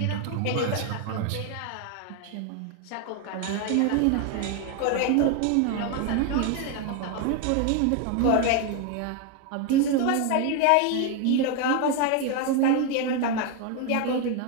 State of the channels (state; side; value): different; both; correlation 0.01